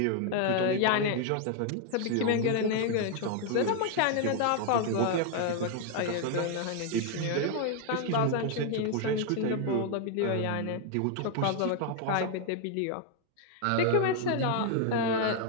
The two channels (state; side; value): different; both; correlation 0.00